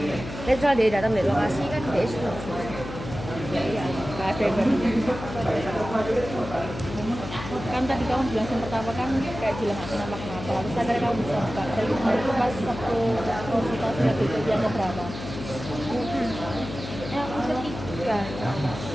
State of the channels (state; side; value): noise; left; hum, 10 dB below the sound